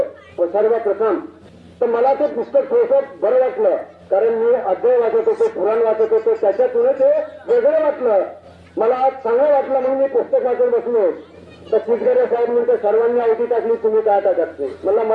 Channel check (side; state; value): both; identical; correlation 1.00